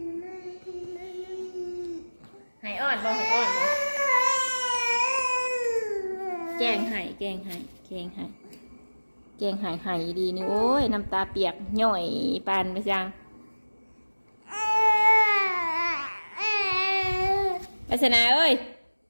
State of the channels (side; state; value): both; inverted; correlation -1.00